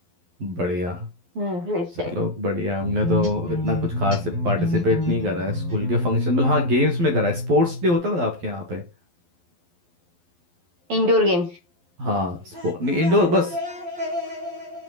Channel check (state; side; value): late; left; 12 ms